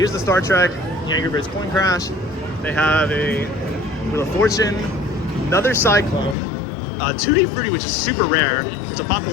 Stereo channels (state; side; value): drops out; right; at 6.4 s